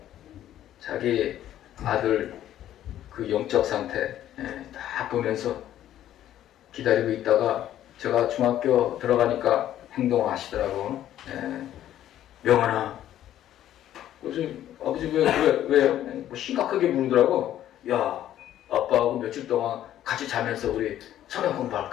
자기 아들 그 영적 상태 딱 보면서 기다리고 있다가 제가 중학교 들어가니까 행동을 하시더라고. 명환아. 그래서 아버지 왜요? 심각하게 물으더라고. 야 아빠하고 며칠 동안 같이 자면서 우리 성경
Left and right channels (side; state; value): right; quieter; 12.0 dB